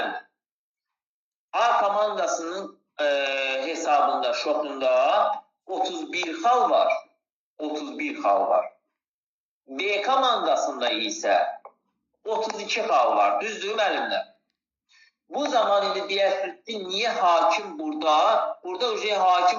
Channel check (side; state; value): both; identical; correlation 1.00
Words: A komandasının hesabında, şotunda 31 xal var. B komandasında isə 32 xal var. Düzdür, müəllimlər? Bu zaman indi deyərsiniz ki, niyə hakim burada